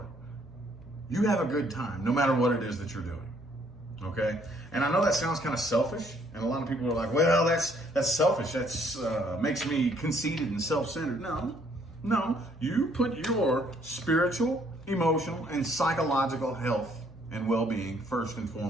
a good time, no matter what it is that you're doing. Okay, and I know that sounds kind of selfish, and a lot of people are like, "Well, that's selfish. That's makes me conceited and self-centered." No, you put your spiritual, emotional, and psychological health and well-being first and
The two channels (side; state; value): both; normal; correlation 0.65